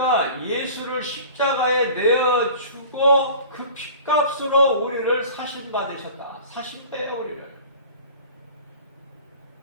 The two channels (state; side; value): inverted; both; correlation -0.42